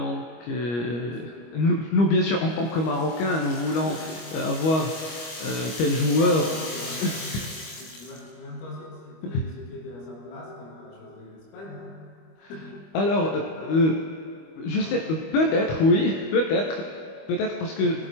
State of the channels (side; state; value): right; late; 25 ms